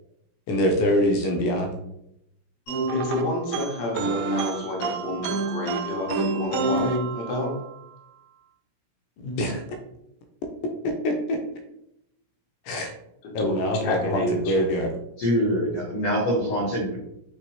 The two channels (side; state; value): right; late; 17 ms